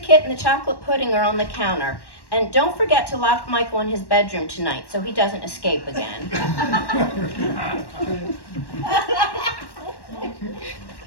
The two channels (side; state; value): right; late; 1.1 ms